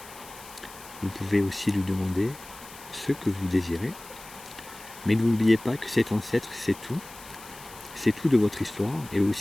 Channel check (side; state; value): left; noise; hiss, 18 dB below the sound